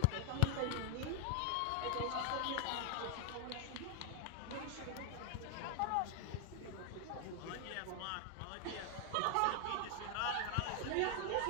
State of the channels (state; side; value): different; both; correlation 0.00